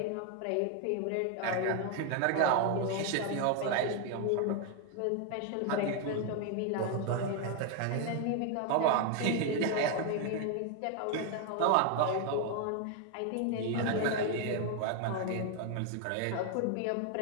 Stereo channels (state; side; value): different; both; correlation 0.01